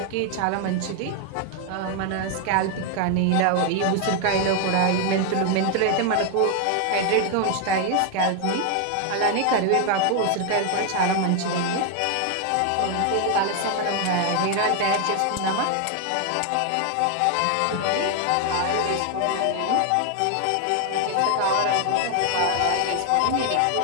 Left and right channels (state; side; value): different; both; correlation 0.00